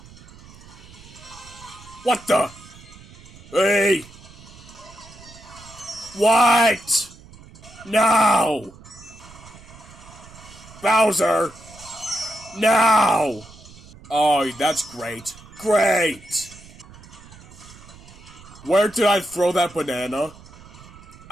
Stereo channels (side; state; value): right; noise; rumble, 20 dB below the sound